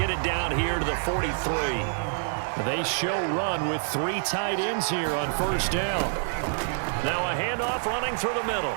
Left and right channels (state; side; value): silent; left; digital silence